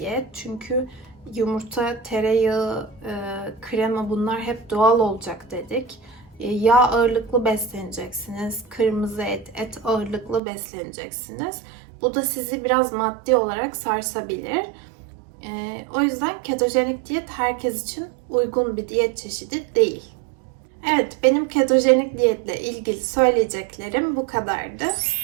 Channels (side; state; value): left; drops out; at 10.4 s